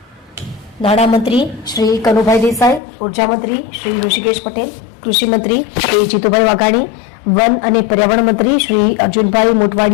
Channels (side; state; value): right; drops out; at 2.8 s